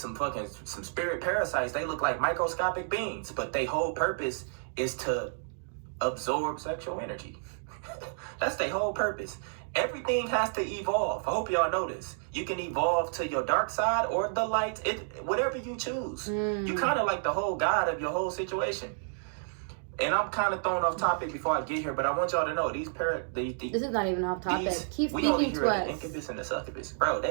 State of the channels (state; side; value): silent; left; digital silence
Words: spirit parasites. They look like microscopic beings, but their whole purpose is to absorb sexual energy. That's their whole purpose. Everything has to evolve. I hope y'all know this. You can evolve to your dark side or the light, whatever you choose. You kind of like the whole god of your whole situation. And I'm kind of thrown off topic before I get here, but I want y'all to know this is not even off topic. Keep speaking to us. The incubus and the succubus, bro.